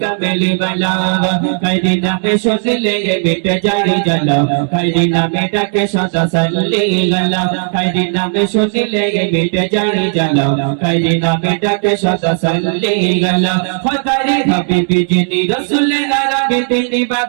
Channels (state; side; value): silent; left; 71 dB below the other